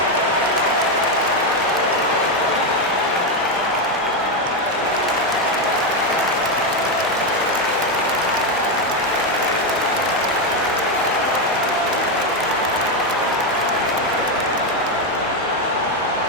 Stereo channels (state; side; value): normal; both; correlation 0.07